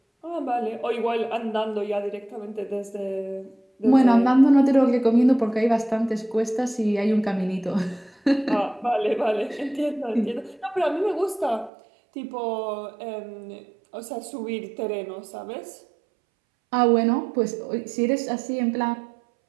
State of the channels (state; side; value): drops out; left; at 11.7 s